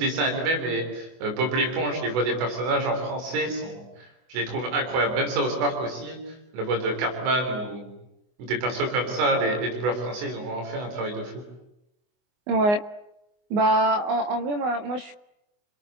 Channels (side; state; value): left; late; 24 ms